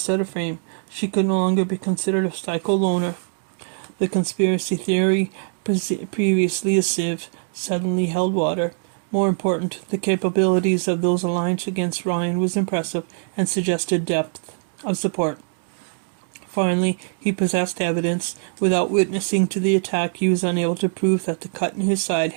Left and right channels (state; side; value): silent; left; digital silence